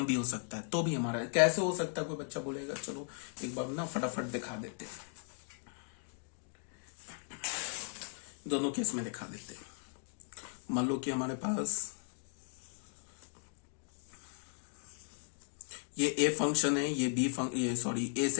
भी हो सकता है। तो भी हमारा कैसे हो सकता है, कोई बच्चा बोलेगा, चलो एक बार ना फटाफट दिखा देते हैं, दोनों केस में दिखा देते हैं। मान लो कि हमारे पास ये ए फंक्शन है, ये बी ये सॉरी ए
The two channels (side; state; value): right; silent; 53 dB below the other